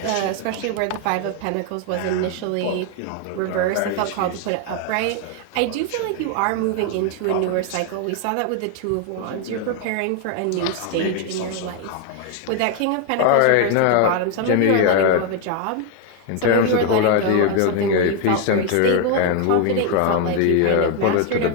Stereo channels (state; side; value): different; both; correlation 0.01